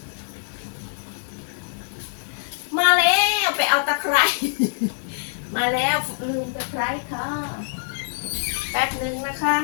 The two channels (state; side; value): silent; right; digital silence